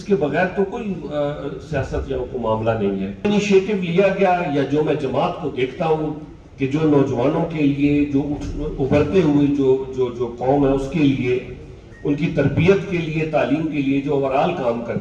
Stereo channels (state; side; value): identical; both; correlation 1.00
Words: کے بغیر تو کوئی سیاست یا کوئی معاملہ نہیں ہے. انیشیٹو لیا گیا، یا جو میں جماعت کو دیکھتا ہوں کہ جو نوجوانوں کے لیے، جو ابھرتے ہوئے جو قوم ہے اس کے لیے، ان کی تربیت کے لیے، تعلیم کے لیے جو اوورال کام